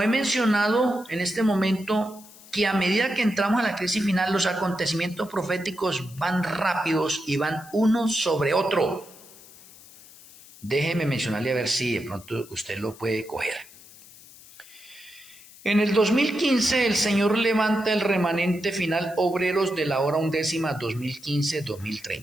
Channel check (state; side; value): noise; left; hiss, 21 dB below the sound